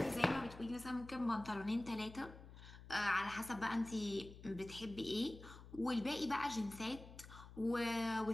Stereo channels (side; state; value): left; noise; hum, 16 dB below the sound